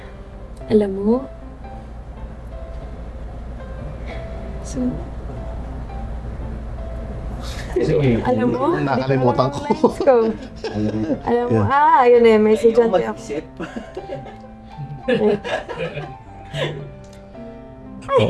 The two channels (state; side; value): identical; both; correlation 1.00